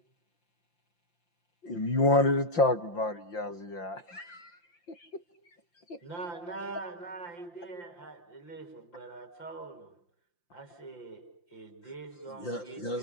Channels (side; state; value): right; late; 5.8 ms